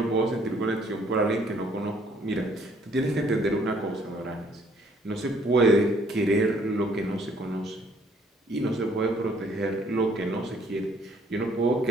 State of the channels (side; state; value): both; normal; correlation 0.63